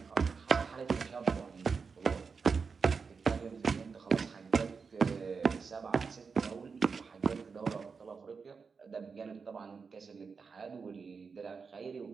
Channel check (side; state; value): left; quieter; 5.3 dB